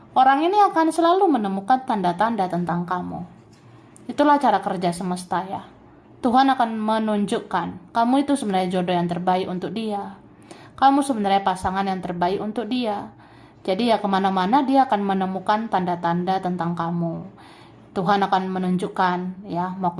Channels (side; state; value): both; identical; correlation 1.00